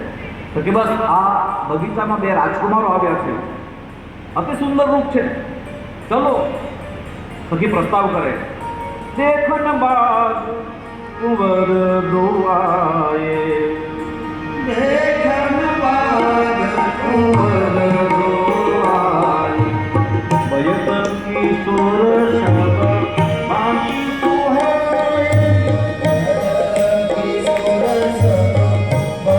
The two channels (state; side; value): identical; both; correlation 1.00